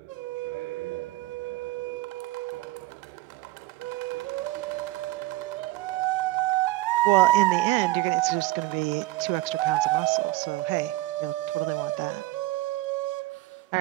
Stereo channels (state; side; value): quieter; left; 18.5 dB